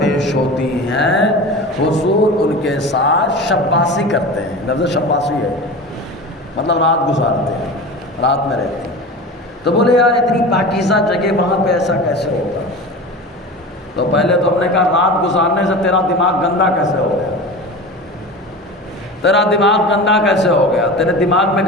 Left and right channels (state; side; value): normal; both; correlation 0.32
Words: ہوتی ہیں، حضور ان کے ساتھ شباسی کرتے ہیں۔ لفظ شباسی ہے مطلب رات گزارتے ہیں، رات میں رہتے ہیں۔ تو بولے یار اتنی پاکیزہ جگہ وہاں پہ ایسا کیسے ہوگا؟ تو پہلے تو ہم نے کہا رات گزارنے سے تیرا دماغ گندا کیسے ہو گیا؟ تیرا دماغ گندا کیسے ہو گیا؟ تیرے دماغ میں